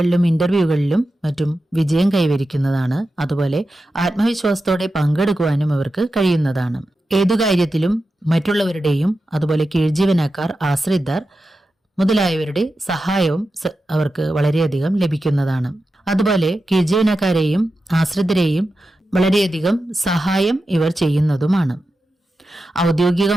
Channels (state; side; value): normal; both; correlation 0.91